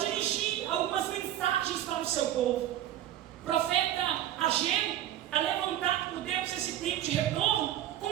algumas mensagens para o seu povo. O profeta Ageu é levantado por Deus nesse tempo de retorno com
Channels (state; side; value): quieter; left; 12.2 dB